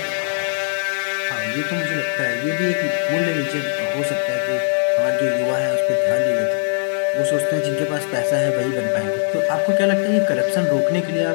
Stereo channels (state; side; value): silent; right; digital silence